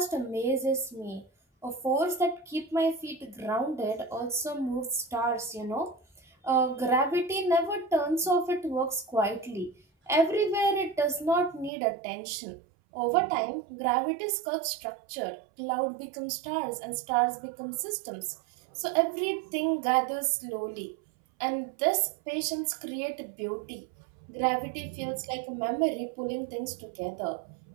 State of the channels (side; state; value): left; drops out; at 11.7 s